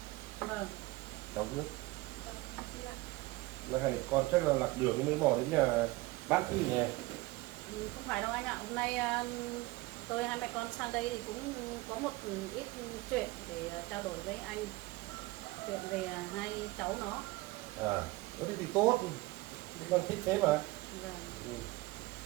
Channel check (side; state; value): left; quieter; 20.8 dB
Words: Vâng. cháu nước. Là hai con chắc là lạc đường mới bỏ đến nhà bác chứ nhỉ? Không phải đâu anh ạ. Hôm nay tôi hai mẹ con sang đây thì cũng có một ít chuyện để trao đổi với anh. Chuyện về hai cháu nó. À, thế thì tốt. Con thích thế mà. Vâng. Ừ.